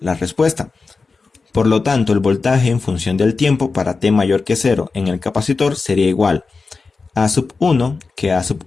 respuesta. Por lo tanto, el voltaje en función del tiempo para T mayor que 0 en el capacitor sería igual a A sub 1, que A sub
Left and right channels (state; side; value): quieter; right; 4.3 dB